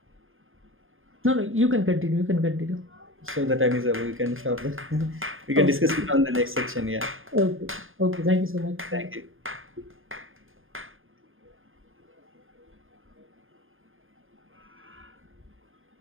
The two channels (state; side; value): late; left; 0.59 ms